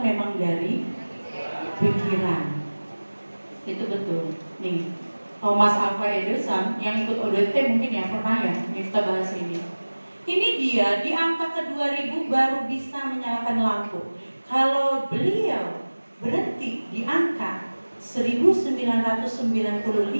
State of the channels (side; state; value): both; inverted; correlation -1.00